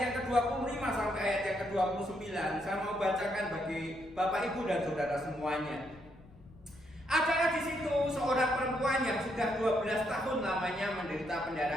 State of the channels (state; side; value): noise; left; rumble, 23 dB below the sound